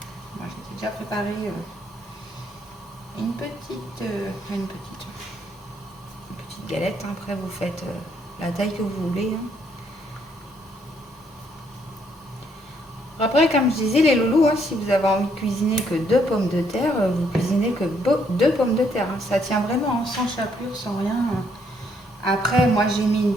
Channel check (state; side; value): normal; both; correlation 0.70